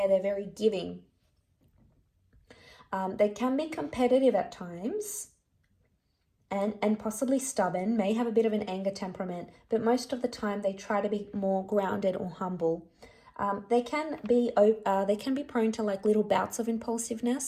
They're very giving. They can be competitive at times and possibly stubborn, may have a bit of an anger temperament, but most of the time they try to be more grounded or humble. They can be prone to like little bouts of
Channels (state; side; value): identical; both; correlation 1.00